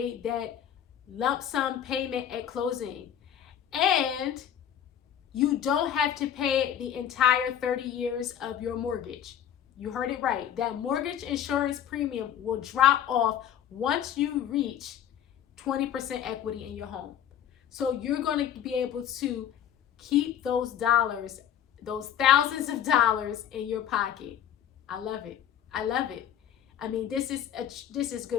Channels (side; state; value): right; quieter; 9.8 dB